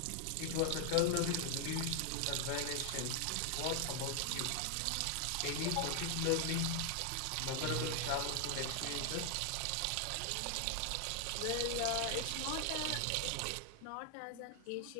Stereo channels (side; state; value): both; different; correlation 0.00